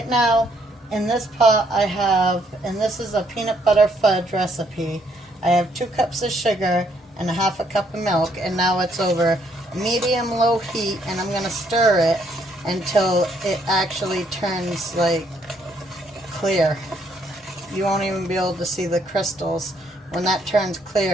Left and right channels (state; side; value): normal; both; correlation 0.70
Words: now in this pot I have, and this is a peanut butter fudge recipe, I have 2 cups of sugar and a half a cup of milk, and now it's over medium low heat, and I'm going to stir it until it actually turns like clear. You won't even be able to see the crystals. When that turns